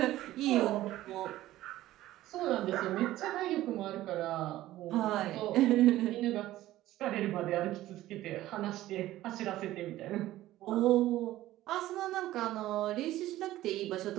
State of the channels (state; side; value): quieter; left; 15.1 dB